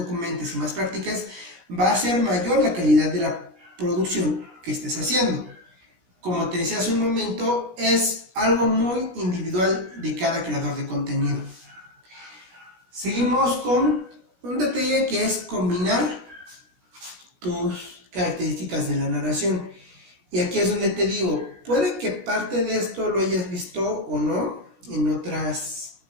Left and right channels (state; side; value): late; left; 17 ms